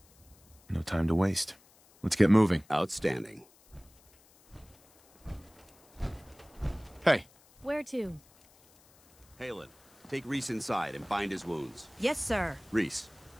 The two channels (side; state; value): left; noise; hiss, 28 dB below the sound